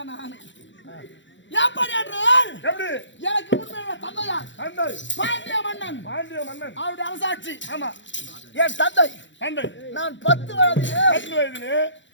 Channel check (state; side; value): late; right; 0.54 ms